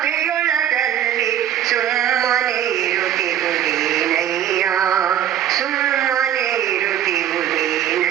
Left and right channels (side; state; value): left; quieter; 10.9 dB